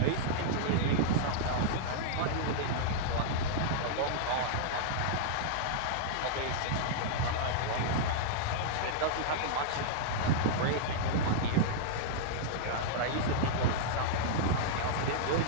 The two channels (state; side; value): different; both; correlation -0.02